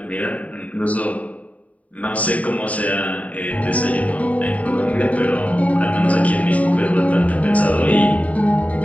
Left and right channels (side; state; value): right; late; 0.069 ms